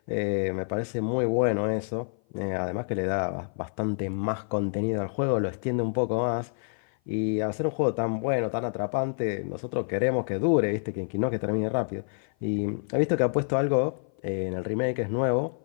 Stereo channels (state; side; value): silent; right; 56 dB below the other